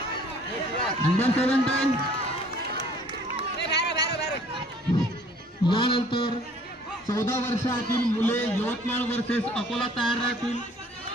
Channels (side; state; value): both; normal; correlation 0.55